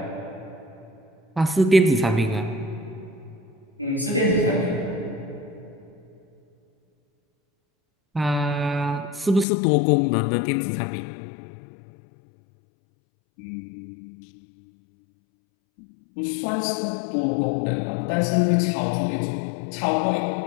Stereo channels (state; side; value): drops out; right; at 9.5 s